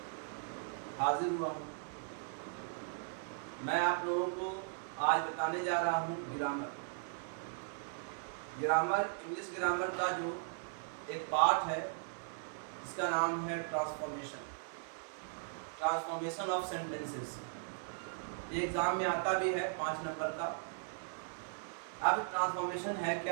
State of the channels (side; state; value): left; silent; digital silence